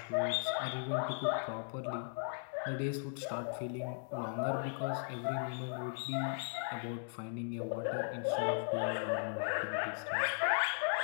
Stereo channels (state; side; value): silent; right; digital silence